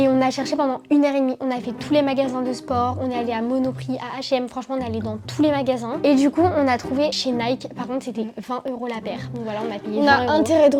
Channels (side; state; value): both; identical; correlation 1.00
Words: on a cherché pendant 1h30. On a fait tous les magasins de sport, on est allé à Monoprix, à H&M, franchement on est allé dans tous les magasins. Et du coup, on a trouvé chez Nike, par contre c'était 20 € la paire. Donc voilà, on a payé 20 €. On a intérêt de